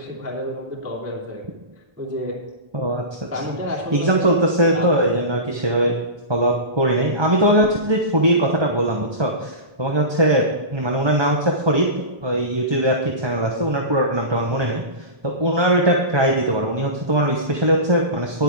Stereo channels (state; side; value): late; left; 1.2 ms